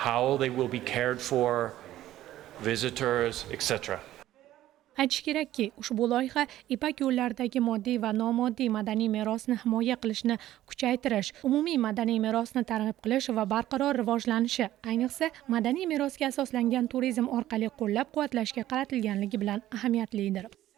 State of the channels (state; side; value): quieter; left; 13.9 dB